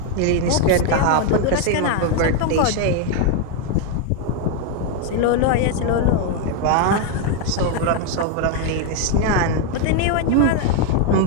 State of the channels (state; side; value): different; both; correlation 0.01